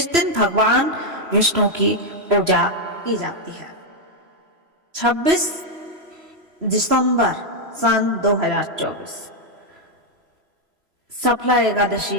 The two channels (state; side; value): late; left; 3.0 ms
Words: दिन भगवान विष्णु की पूजा की जाती है। 26 दिसंबर सन 2024 सफला